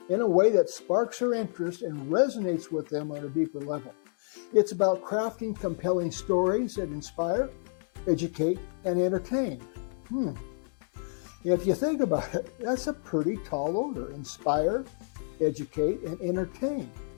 in a way that sparks their interest and resonates with them on a deeper level. It's about crafting compelling stories that inspire, educate, and entertain. If you think about it, that's a pretty tall order: inspire, educate, and entertain.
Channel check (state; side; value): silent; right; digital silence